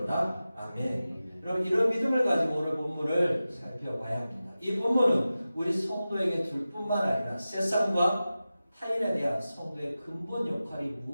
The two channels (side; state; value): both; inverted; correlation -0.94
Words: 아멘. 여러분, 이런 믿음을 가지고 오늘 본문을 살펴봐야 합니다. 이 본문은 우리 성도에게 줄 뿐만 아니라 세상과 타인에 대한 성도의 근본 역할이